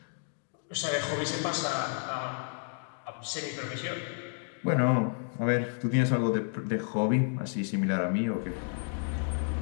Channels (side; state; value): right; silent; 57 dB below the other